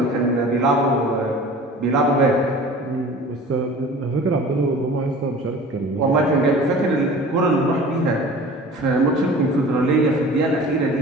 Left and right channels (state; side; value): normal; both; correlation 0.42